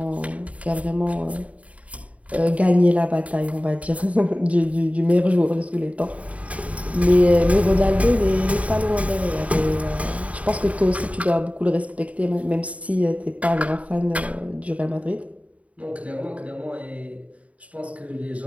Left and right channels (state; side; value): late; left; 0.067 ms